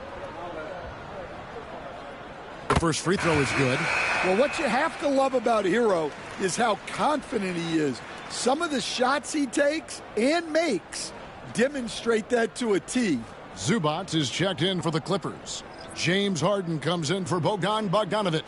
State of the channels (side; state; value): both; identical; correlation 1.00